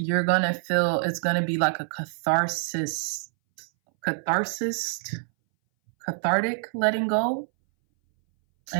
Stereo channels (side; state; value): left; silent; 60 dB below the other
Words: gonna feel it's gonna be like a cathartic letting go